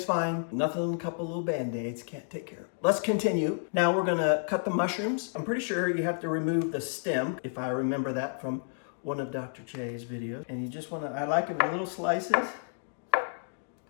fine. Nothing, a couple little band-aids, can't take care of it. Let's continue. Now we're gonna cut the mushrooms. I'm pretty sure you have to remove the stem, if I remember that from one of Dr. J's videos. And you just wanna, I like it in little slices. So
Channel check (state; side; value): silent; right; digital silence